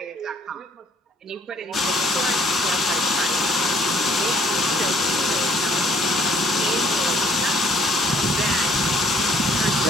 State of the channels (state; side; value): normal; both; correlation 0.60